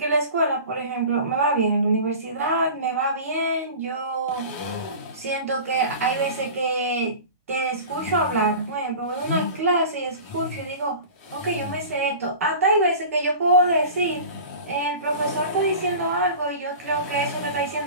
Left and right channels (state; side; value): inverted; both; correlation -0.37